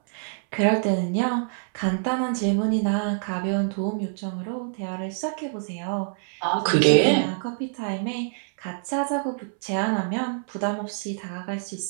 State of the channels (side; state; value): left; silent; 60 dB below the other